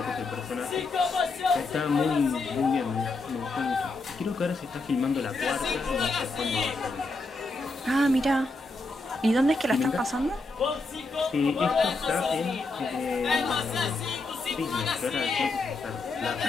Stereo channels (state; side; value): quieter; right; 3.3 dB